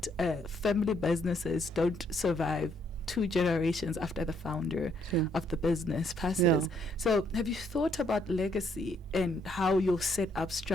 family businesses don't survive 2 generations after the founder of the business passes. So have you thought about legacy and how you'll set up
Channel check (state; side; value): normal; both; correlation 0.70